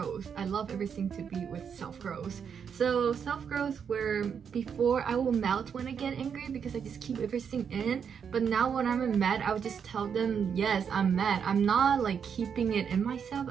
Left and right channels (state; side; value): quieter; left; 7.2 dB